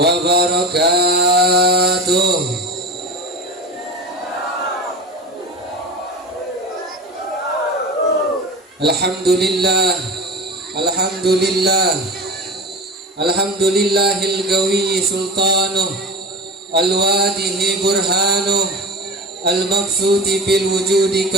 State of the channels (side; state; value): both; normal; correlation 0.31